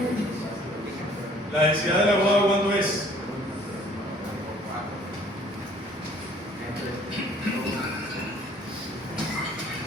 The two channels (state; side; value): normal; both; correlation 0.56